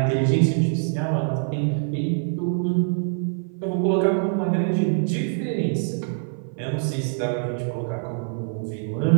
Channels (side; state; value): left; silent; 56 dB below the other